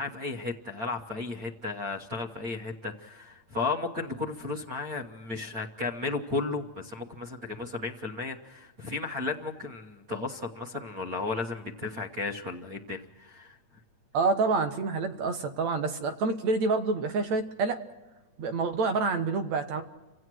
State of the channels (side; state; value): left; late; 8.7 ms